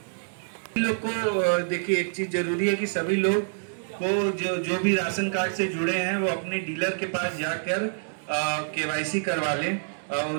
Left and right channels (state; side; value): silent; left; 60 dB below the other